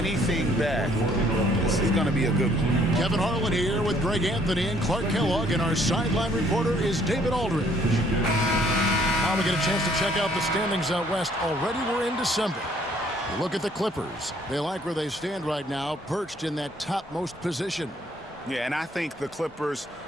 back. This is going to be a good one. Kevin Harlan here with Greg Anthony and Clark Kellogg, and our sideline reporter is David Aldridge. Now we get a chance to check out the standings out west. Already we're in December. Look at the Clippers. They like where they stand right now, perched in that topmost position. Yeah, and I think the Clippers,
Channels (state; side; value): normal; both; correlation 0.63